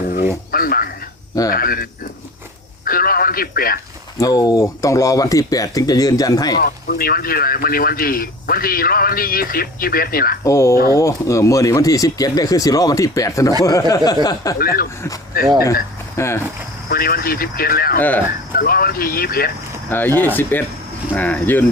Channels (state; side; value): normal; both; correlation 0.39